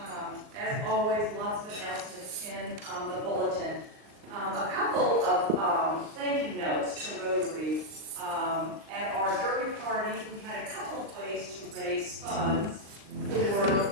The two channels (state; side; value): late; left; 38 ms